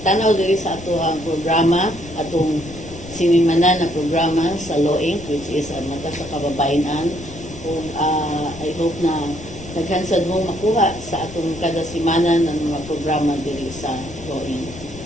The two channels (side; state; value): left; noise; rumble, 15 dB below the sound